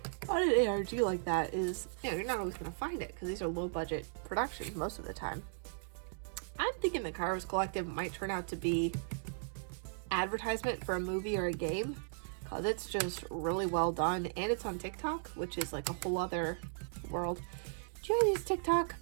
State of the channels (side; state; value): left; silent; digital silence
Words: ARG like that is, you know, you're not always going to find it, because these are low budget productions most of the time. I'm thinking the Kairos Collective might turn out to be advertisement for a movie or a game, because it's just really well done, and it's on TikTok, which is like a whole other world. Do you guys use TikTok?